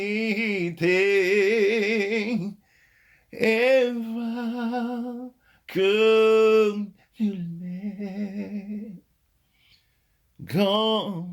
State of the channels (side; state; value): both; identical; correlation 1.00